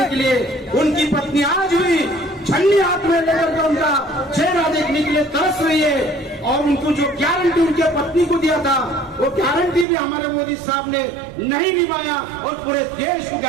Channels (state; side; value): drops out; left; at 9.9 s